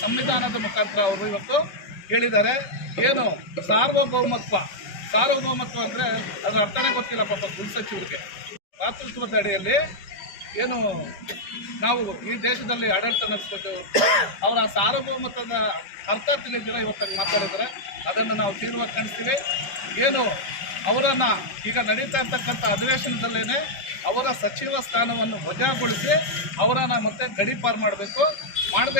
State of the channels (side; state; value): right; late; 5.3 ms